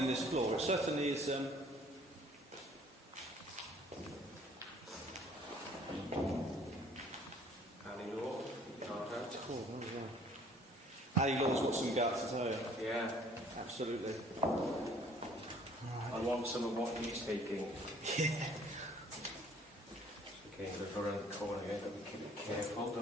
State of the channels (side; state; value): both; normal; correlation 0.57